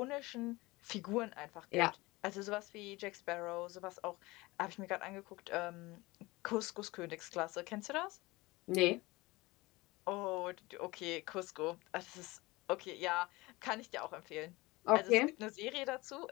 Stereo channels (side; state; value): right; quieter; 21.8 dB